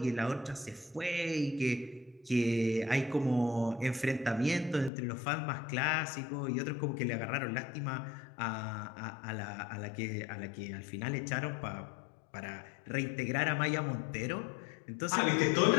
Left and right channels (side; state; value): right; drops out; at 4.9 s